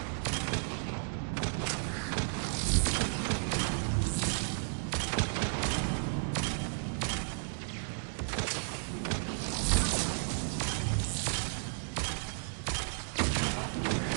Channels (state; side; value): silent; left; digital silence